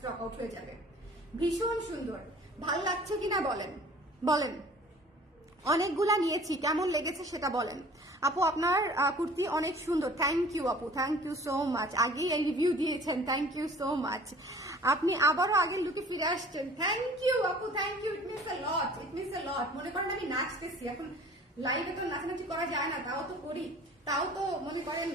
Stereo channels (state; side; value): normal; both; correlation 0.49